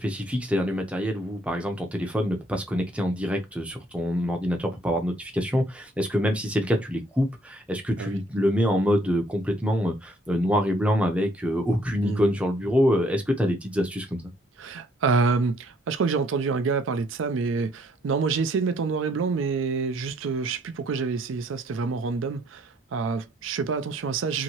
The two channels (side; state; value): both; normal; correlation 0.66